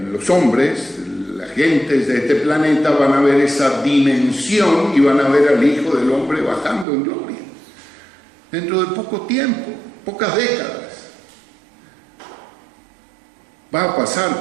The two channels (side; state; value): left; drops out; at 6.9 s